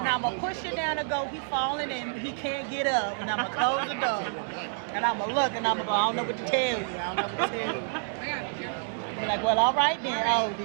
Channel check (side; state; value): left; silent; 59 dB below the other